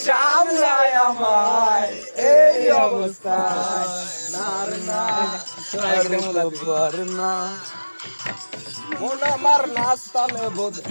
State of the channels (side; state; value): both; inverted; correlation -1.00